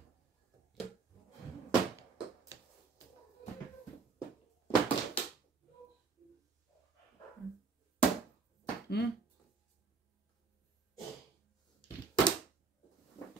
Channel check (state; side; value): quieter; left; 4.9 dB